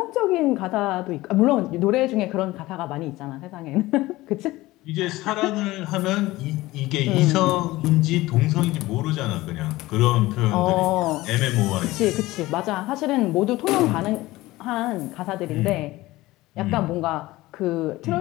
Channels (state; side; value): quieter; right; 18.5 dB